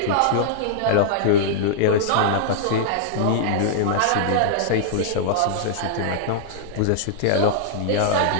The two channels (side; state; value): both; different; correlation -0.01